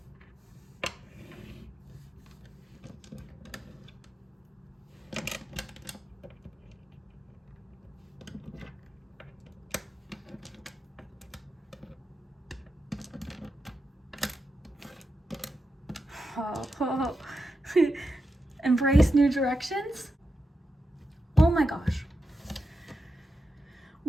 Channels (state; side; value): normal; both; correlation 0.88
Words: Oh. Embrace new directions? Oh my gosh.